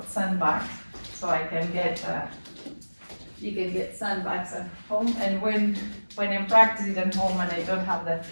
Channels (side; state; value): both; inverted; correlation -1.00